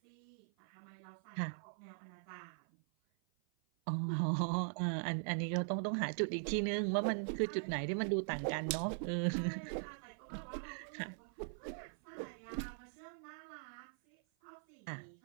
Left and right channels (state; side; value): silent; left; 50 dB below the other